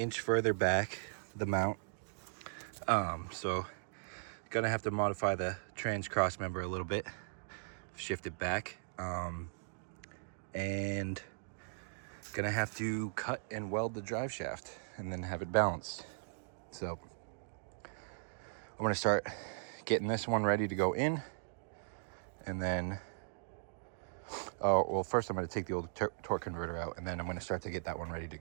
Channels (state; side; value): silent; left; digital silence